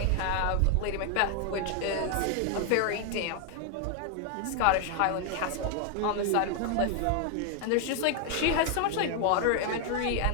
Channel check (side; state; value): both; different; correlation 0.00